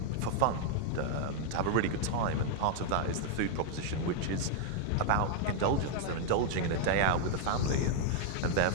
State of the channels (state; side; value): different; both; correlation -0.01